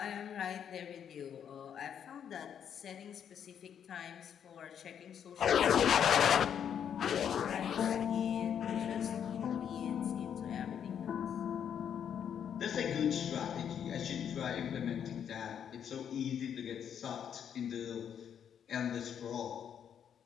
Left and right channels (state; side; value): quieter; right; 8.5 dB